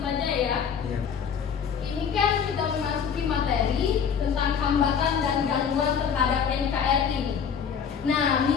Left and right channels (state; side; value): quieter; right; 7.2 dB